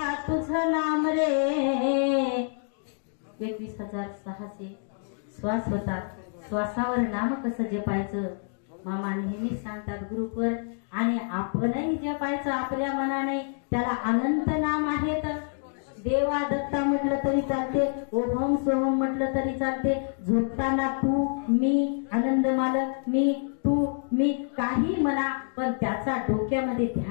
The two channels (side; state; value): right; silent; 60 dB below the other